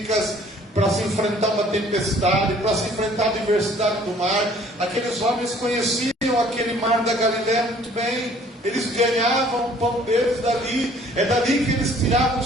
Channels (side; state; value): both; normal; correlation 0.56